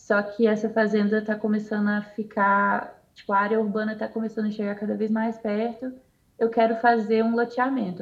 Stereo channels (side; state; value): both; identical; correlation 1.00